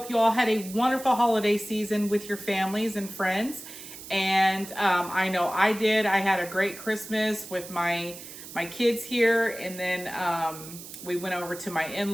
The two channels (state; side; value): noise; right; hiss, 14 dB below the sound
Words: you all had a wonderful holiday season with your families and friends. And I know I did. I had a great Christmas with my kids here. And then we went over to my